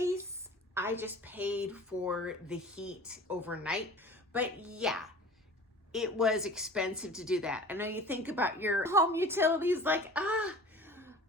I just paid for the heat overnight. But yeah, it was expensive to do that. I know you think about your home utilities like,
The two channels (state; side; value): normal; both; correlation 0.42